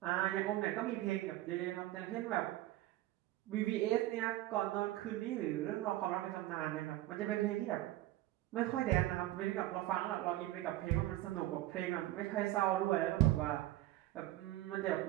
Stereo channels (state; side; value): quieter; left; 15.8 dB